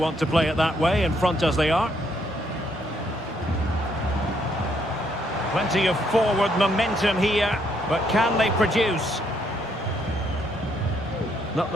to play it that way, in front as they are. Plenty of forward momentum here, but can they produce? Not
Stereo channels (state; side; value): normal; both; correlation 0.72